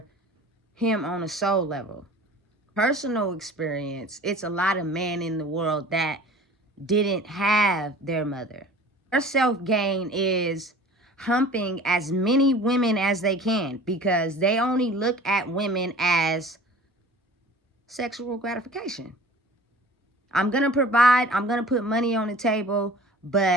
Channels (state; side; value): normal; both; correlation 0.44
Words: him on a soul level. Personal experience, it's a lot of men in the world that didn't have their mother. Their self-gain is humping as many women as they can, because they only look at women as sexual gratification. I'm going to provide, I'm going to put money on the table,